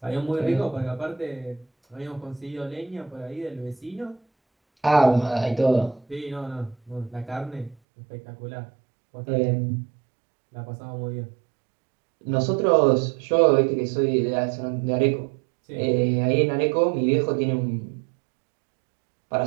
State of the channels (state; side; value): drops out; left; at 7.8 s